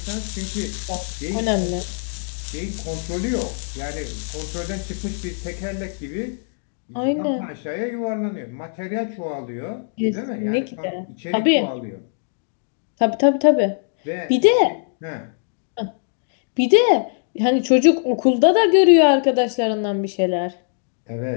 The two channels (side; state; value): right; silent; digital silence